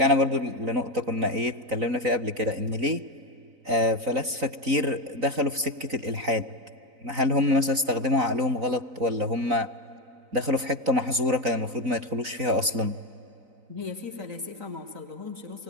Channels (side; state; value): left; late; 3.9 ms